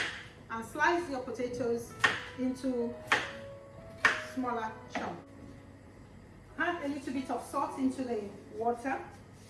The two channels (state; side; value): identical; both; correlation 1.00